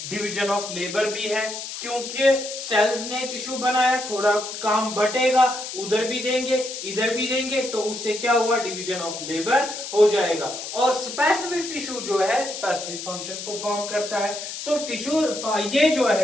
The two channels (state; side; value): noise; left; hiss, 8 dB below the sound